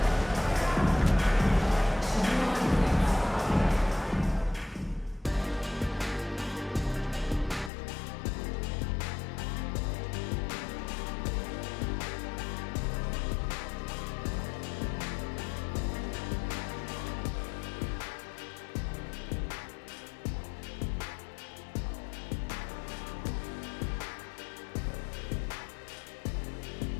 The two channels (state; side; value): drops out; right; at 7.7 s